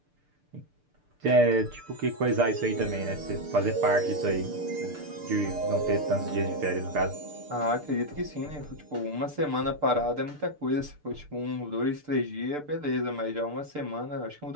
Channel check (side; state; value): left; late; 6.7 ms